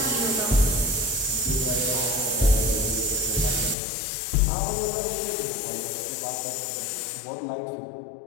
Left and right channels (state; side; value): drops out; right; at 3.8 s